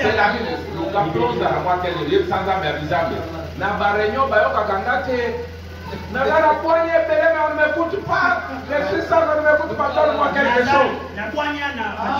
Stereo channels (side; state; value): both; identical; correlation 1.00